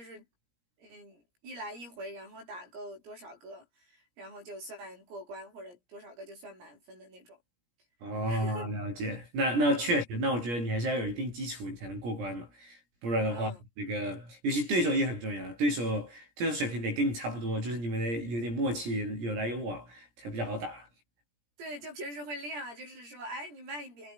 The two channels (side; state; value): left; late; 17 ms